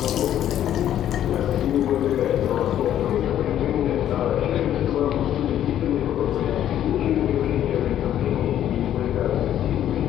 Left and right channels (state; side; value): quieter; right; 11.2 dB